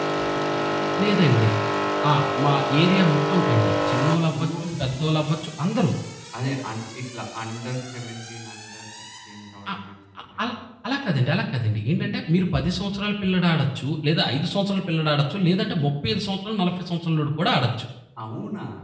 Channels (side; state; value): both; identical; correlation 1.00